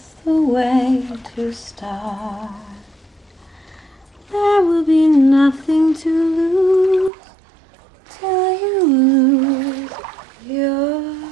the way to start. There will be nothing to lose till you lose your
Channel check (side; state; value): left; drops out; at 7.1 s